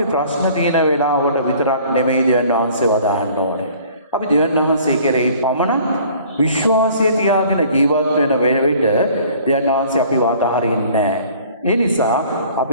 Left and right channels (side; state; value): both; inverted; correlation -0.52